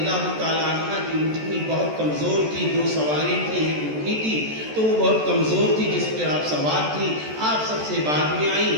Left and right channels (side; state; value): left; late; 14 ms